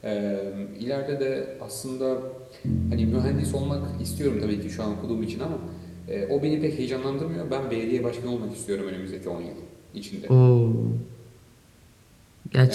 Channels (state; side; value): identical; both; correlation 1.00